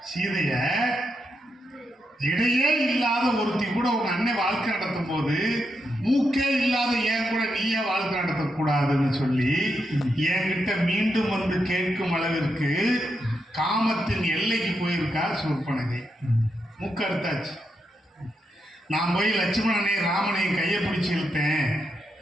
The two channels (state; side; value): normal; both; correlation 0.83